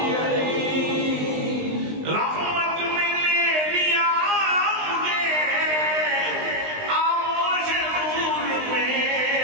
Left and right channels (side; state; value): left; late; 20 ms